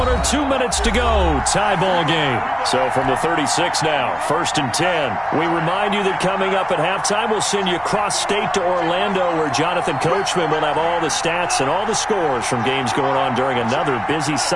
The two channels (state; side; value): identical; both; correlation 1.00